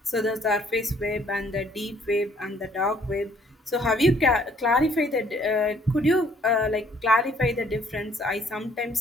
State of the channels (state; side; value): normal; both; correlation 0.62